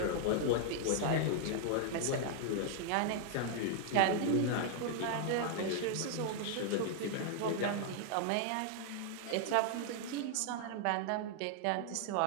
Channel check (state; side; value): different; both; correlation -0.01